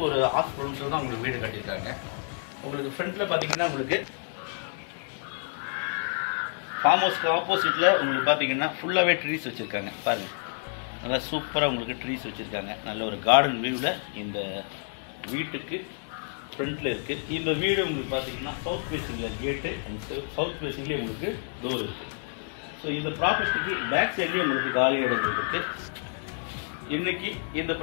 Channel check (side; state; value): right; silent; 59 dB below the other